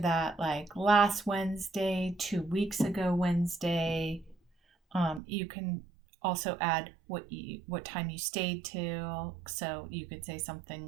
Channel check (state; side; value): drops out; left; at 5.2 s